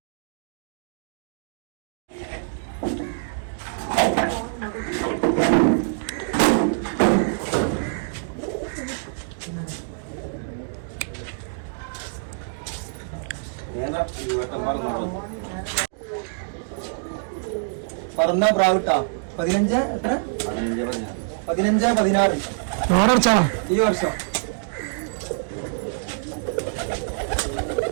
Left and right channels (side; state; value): left; silent; digital silence